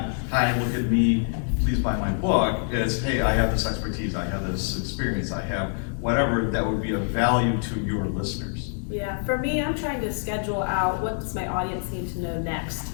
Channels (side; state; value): right; silent; 57 dB below the other